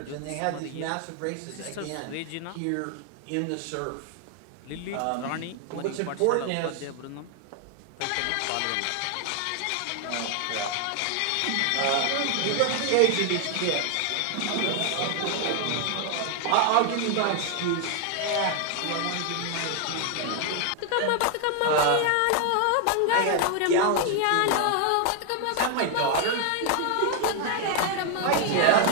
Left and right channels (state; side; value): different; both; correlation 0.00